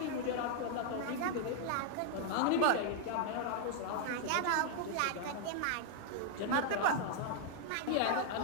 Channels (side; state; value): both; different; correlation 0.00